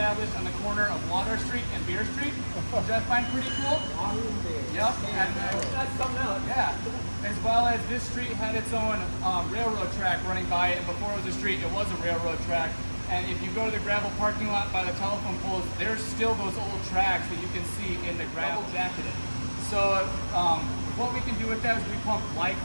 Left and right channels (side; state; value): both; inverted; correlation -1.00